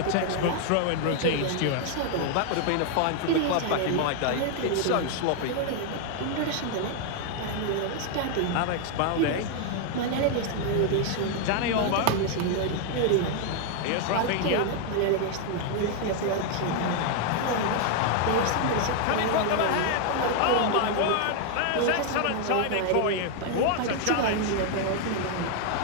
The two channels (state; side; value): different; both; correlation 0.00